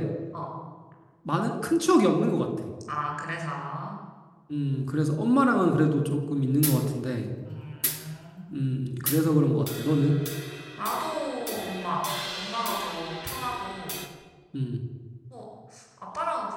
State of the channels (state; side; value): identical; both; correlation 1.00